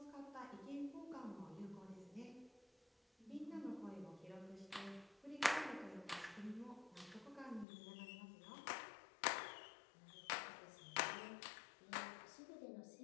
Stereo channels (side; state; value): right; drops out; at 7.7 s